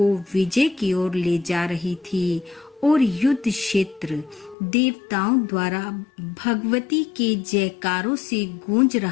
विजय की ओर ले जा रही थी और युद्ध क्षेत्र देवताओं द्वारा भगवती के जयकारों से गूंज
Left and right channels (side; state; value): right; drops out; at 4.5 s